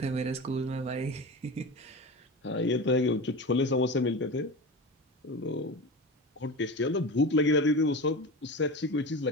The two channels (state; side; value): normal; both; correlation 0.27